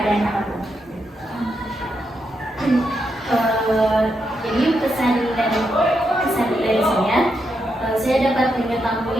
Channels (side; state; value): both; normal; correlation 0.82